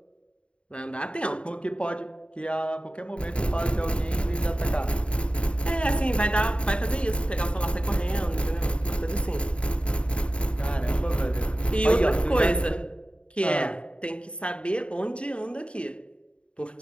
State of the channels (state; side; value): late; right; 0.058 ms